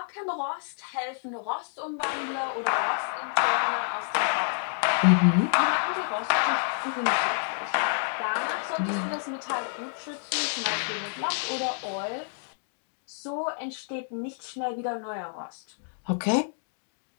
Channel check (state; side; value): silent; right; digital silence